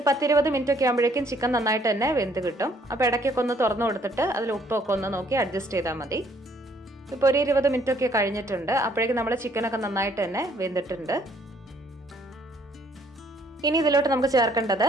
10-20 മിനിറ്റ് ഒക്കെ ആകുമ്പോഴേക്കും ചിക്കൻ നന്നായിട്ട് തന്നെ വെന്ത് കിട്ടും. അപ്പോൾ ഇടയ്ക്കൊക്കെ ഒന്ന് തുറന്നു കൊടുത്തിട്ട് അതിൽ ഉപ്പൊക്കെ ഒന്ന് നോക്കി അഡ്ജസ്റ്റ് ചെയ്താൽ മതി. ഇപ്പോൾ ഒരു 20 മിനിറ്റ് ഒക്കെ കഴിഞ്ഞിട്ടുണ്ട്. അപ്പോഴേക്കും നമ്മുടെ ചിക്കനൊക്കെ നന്നായിട്ട് തന്നെ വെന്തിട്ടുണ്ട്. ഇനി ഇതിലോട്ട് നമുക്ക് ചേർക്കേണ്ടത്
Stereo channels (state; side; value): normal; both; correlation 0.64